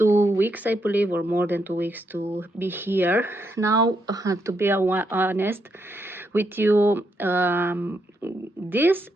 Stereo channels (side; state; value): both; normal; correlation 0.79